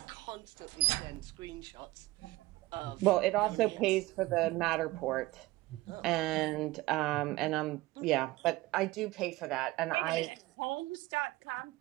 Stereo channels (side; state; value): left; quieter; 19.4 dB